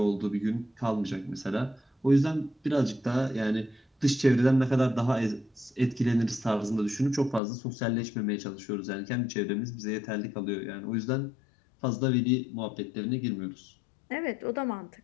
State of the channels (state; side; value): drops out; right; at 7.4 s